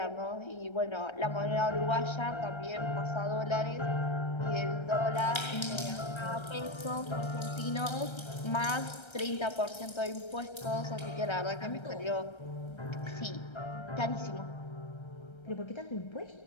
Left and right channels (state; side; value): late; right; 1.3 ms